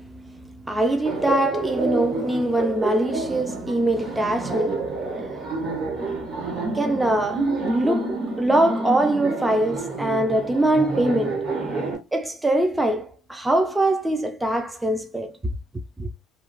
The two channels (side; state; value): both; normal; correlation 0.79